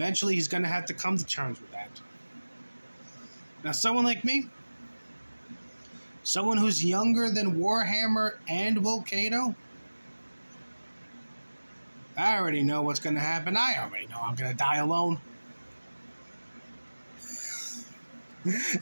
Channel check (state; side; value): inverted; both; correlation -1.00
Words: he's going to have to come to terms with that. Now, someone like me, someone who's younger than Warhammer and Will Cato, I already know what's going to happen. I already know I'm going to die alone.